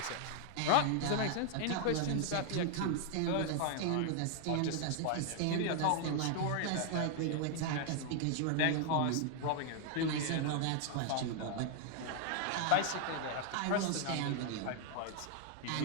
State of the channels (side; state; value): both; different; correlation 0.00